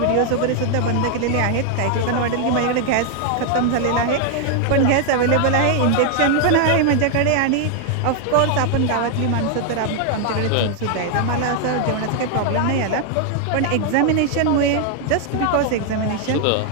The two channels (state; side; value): different; both; correlation 0.00